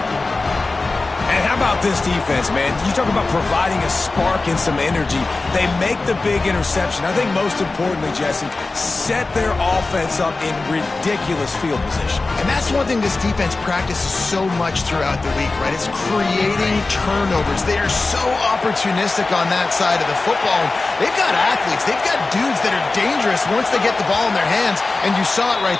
And how about this defense, man? You talk about providing a spark and some energy. They make the big interception. I think most importantly, Jesse, set their offense up in ridiculous field position. And that's one thing this defense practices so much throughout the week, right? It's creating turnovers. They are so opportunistic on that side of the football. They've got athletes. They've got dudes that are dangerous once they get the ball in their hands, and you saw it right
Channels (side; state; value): right; quieter; 3.5 dB